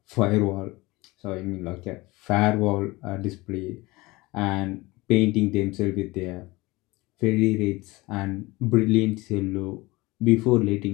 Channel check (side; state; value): right; quieter; 21.8 dB